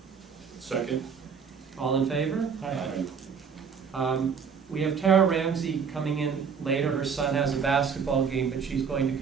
Second. All in favor? Aye. We have Tara Ramsey coming in later. Her son has a basketball game, but she's going to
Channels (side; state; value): left; quieter; 6.3 dB